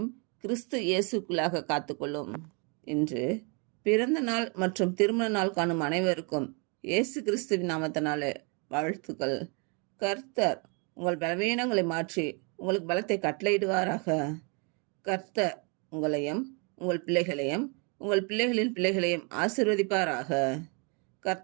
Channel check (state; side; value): quieter; left; 34.1 dB